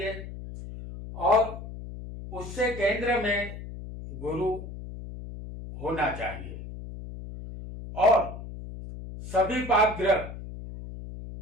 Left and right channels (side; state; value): left; noise; hum, 11 dB below the sound